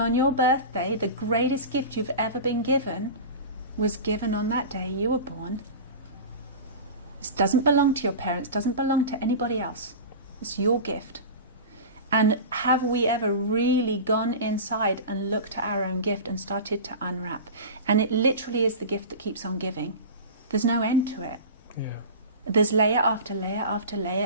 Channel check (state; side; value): inverted; both; correlation -0.31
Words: your birthday. The greatest gift you've ever been given was given on that day you were born. This doesn't belong to your parents, doesn't belong to anybody else. It's your gift. And have we ever really gone inside and looked at our own gift and started to unwrap? And it literally is the gift that keeps on giving. There's no end to it. Yeah. There's layer after layer after